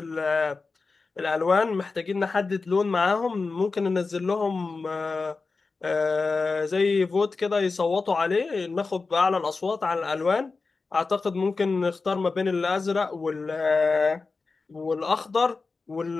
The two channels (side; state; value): right; quieter; 4.1 dB